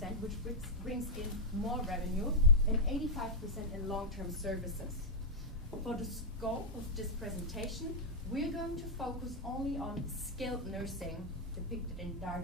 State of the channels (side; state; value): both; normal; correlation -0.03